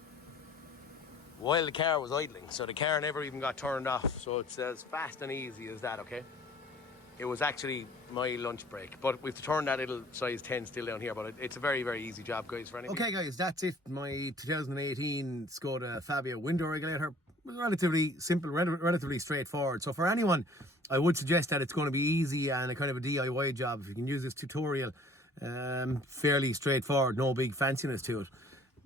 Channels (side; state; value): both; normal; correlation 0.52